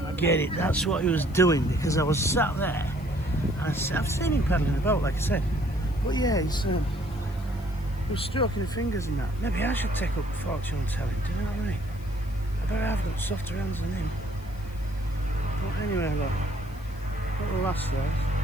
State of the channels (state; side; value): noise; left; hiss, 25 dB below the sound